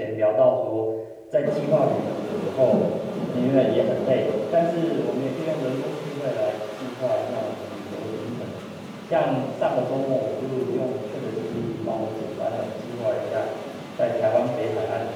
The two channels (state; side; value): identical; both; correlation 1.00